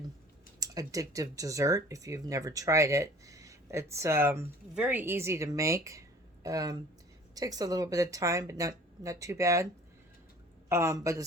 addictive dessert if you've never tried it. It's very easy to make. Takes a little bit of time, but not too bad. But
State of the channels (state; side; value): normal; both; correlation 0.48